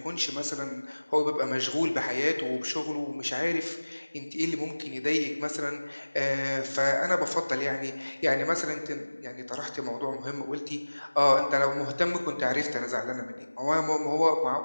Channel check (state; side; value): inverted; both; correlation -1.00